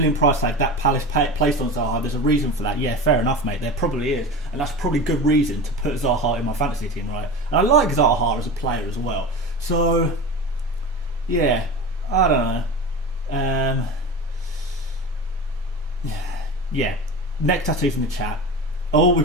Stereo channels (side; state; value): both; normal; correlation 0.29